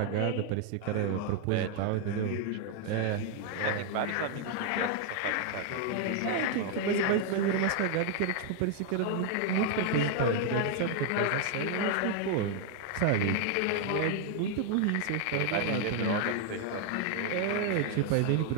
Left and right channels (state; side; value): different; both; correlation 0.00